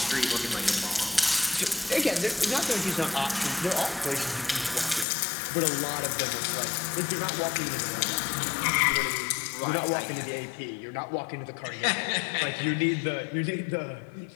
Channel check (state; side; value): drops out; right; at 5.1 s